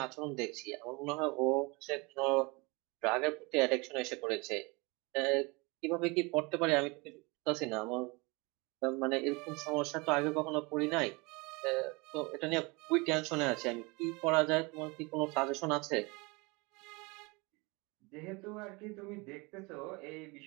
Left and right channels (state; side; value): quieter; left; 26.9 dB